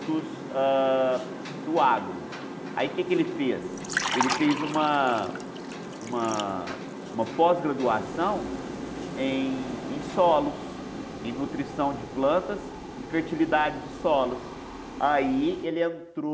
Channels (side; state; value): both; identical; correlation 1.00